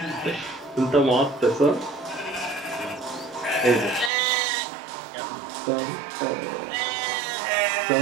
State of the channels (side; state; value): left; drops out; at 4.1 s